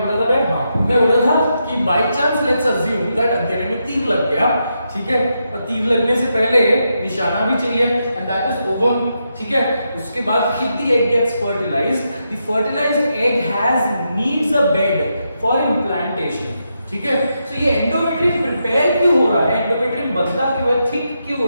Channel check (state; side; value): inverted; both; correlation -0.84